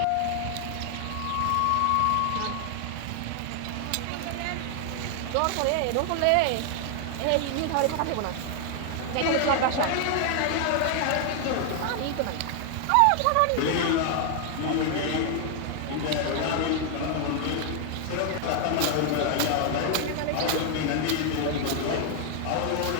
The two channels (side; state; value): both; different; correlation 0.00